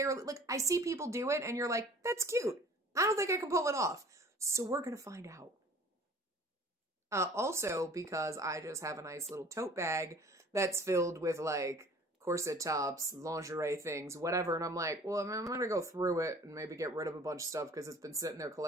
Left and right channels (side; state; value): both; normal; correlation 0.49